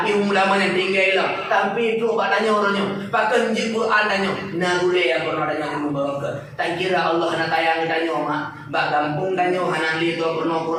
humu ulama yang tinggal lah. Tapi tu pak tanya orangnya. Pakai njib Quran tanya. Nagule yang pernah tanya ilmu barokah. Tak kira Allah nak tayang tanya mak. Bak kampung tanya hana li tu pernah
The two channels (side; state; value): both; identical; correlation 1.00